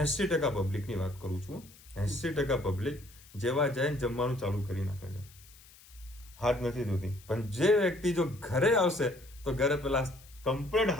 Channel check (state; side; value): noise; left; hiss, 23 dB below the sound